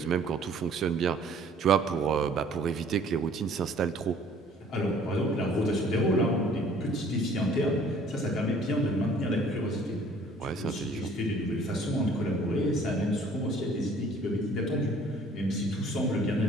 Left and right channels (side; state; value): both; normal; correlation 0.55